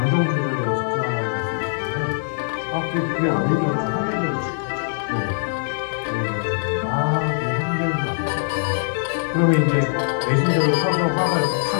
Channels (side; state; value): right; silent; digital silence